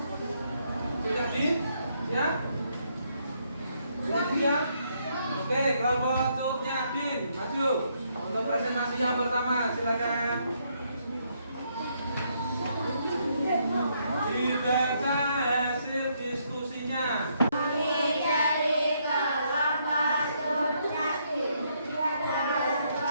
Sudah di? Siap? Sudah siap? Oke, kelompok Cut Nyak-din maju untuk presentasi yang pertama, silakan. Dibaca hasil diskusinya.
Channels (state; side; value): inverted; both; correlation -0.74